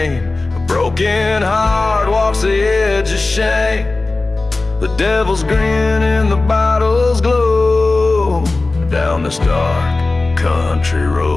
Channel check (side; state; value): right; quieter; 3.3 dB